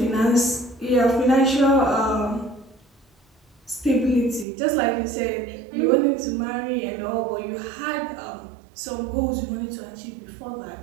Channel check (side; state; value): left; drops out; at 4.5 s